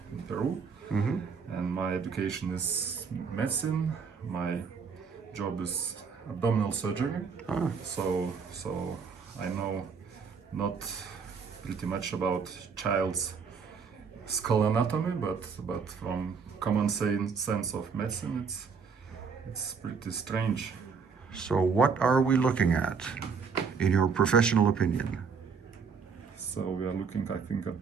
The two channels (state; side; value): quieter; left; 5.8 dB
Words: in Peru. And my education is medicine. My job is abdominal surgery. So I know not pretty much about child's skull anatomy, but from common sense of medicine, it's pretty strange. So what are we looking at, in your professional opinion? So we are looking, I think,